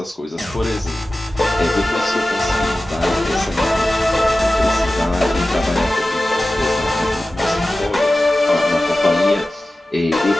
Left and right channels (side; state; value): both; normal; correlation 0.95